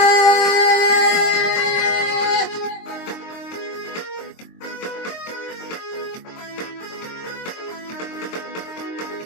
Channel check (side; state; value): right; late; 22 ms